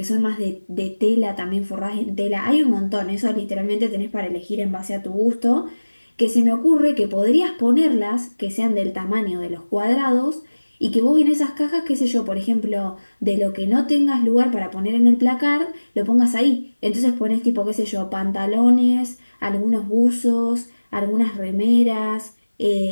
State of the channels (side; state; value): both; inverted; correlation -1.00